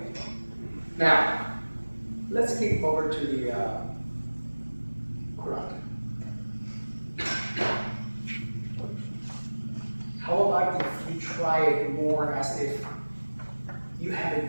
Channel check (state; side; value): inverted; both; correlation -1.00